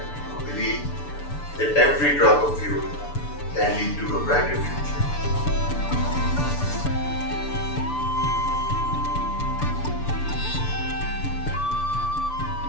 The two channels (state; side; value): late; right; 6.9 ms